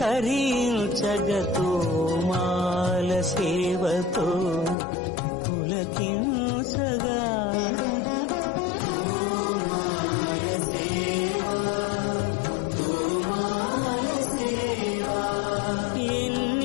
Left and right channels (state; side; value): drops out; right; at 4.8 s